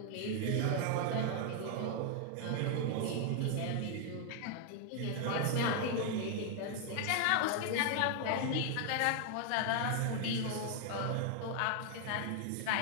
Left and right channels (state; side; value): different; both; correlation 0.00